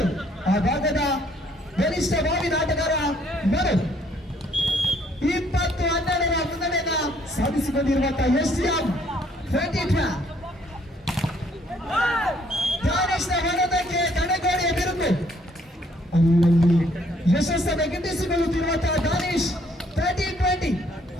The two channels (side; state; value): both; normal; correlation 0.65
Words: ಆ ಭಾಗದ ಬಲಿಷ್ಠ ಭಾವಿ ಆಟಗಾರ ಮನೋ 20-12 ಮುನ್ನಡೆಯನ್ನ ಸಾಧಿಸಿಕೊಂಡಿರುವಂತಹ ಎಸ್ಟಿಎಂ 2012 ದಾನಿಶ್ನ ಹೊಡೆತಕ್ಕೆ ತಡೆಗೋಡೆಯ ಬಿರುಕು ಅಲ್ಲಲ್ಲಿ ಯಶಸ್ಸನ್ನು ಗಿಟ್ಟಿಸಿಕೊಳ್ಳುತ್ತಿರುವಂತಹ ದಾನಿಶ್ 13-20